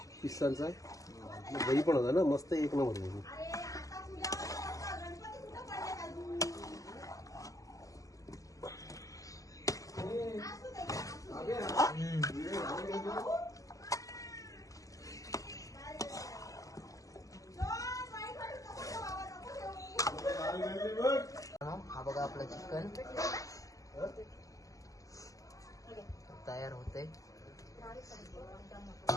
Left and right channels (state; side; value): late; right; 0.16 ms